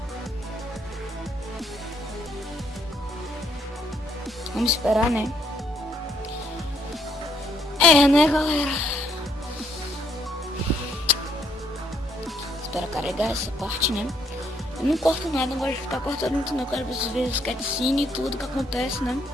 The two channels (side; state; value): both; normal; correlation 0.70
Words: Vamos esperar, né? É, né, galera? Espera carregar essa parte, né? Eu não corto nada, não gosto de ficar cortando muito, não. Eu quero vocês verem os cutscenes e tudo que acontece, né?